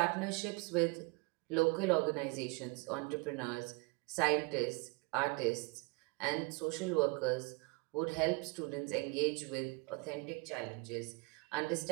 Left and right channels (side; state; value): left; quieter; 29.3 dB